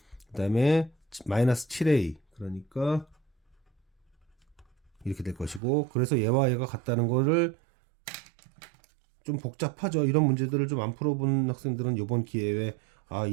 그 다음에 마이너스 7A. 그러니까 이렇게 될 것이고, 그래서 얘와 얘가 같다는 거를 좀 복잡하죠. 이런 문제들을 좀 안 풀어본 학생들은 이번 기회에 아,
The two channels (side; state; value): left; drops out; at 5.6 s